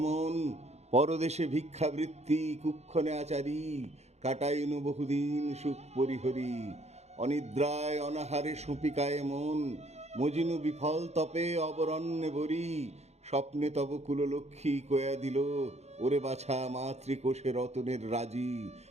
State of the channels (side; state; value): left; late; 0.32 ms